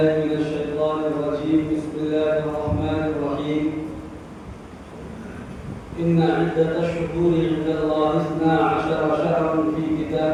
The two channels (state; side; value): identical; both; correlation 1.00